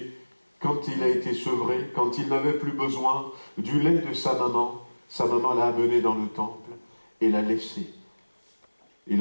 quand il a été sevré, quand il n'avait plus besoin du lait de sa maman l'a amené dans le temple et l'a laissé.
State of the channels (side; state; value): both; inverted; correlation -1.00